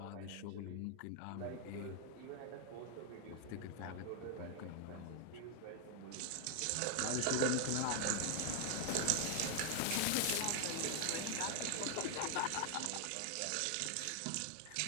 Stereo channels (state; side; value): different; both; correlation 0.00